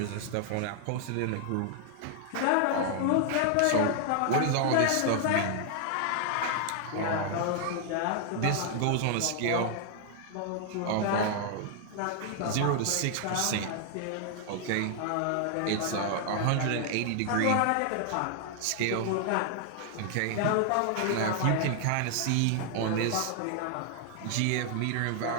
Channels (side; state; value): both; different; correlation 0.00